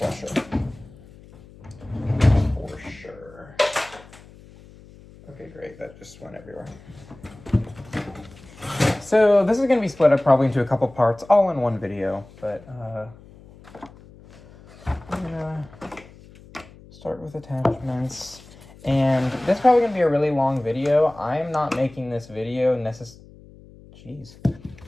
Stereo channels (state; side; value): noise; left; hum, 22 dB below the sound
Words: For sure. Okay, great. That just went everywhere. So this is going to be split up probably into a couple parts, all in one video. But I'm going to start with attachments. And this is probably going to be a really long video. I am not making this video